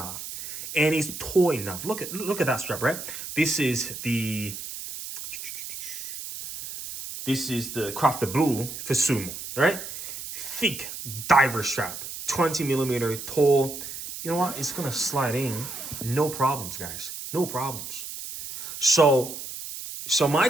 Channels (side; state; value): right; noise; hiss, 9 dB below the sound